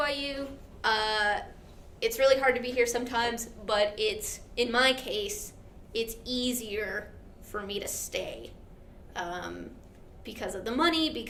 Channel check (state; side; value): identical; both; correlation 1.00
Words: It's really hard to be here sometimes, but it's, in my case, it's easier for me to stay because of the money,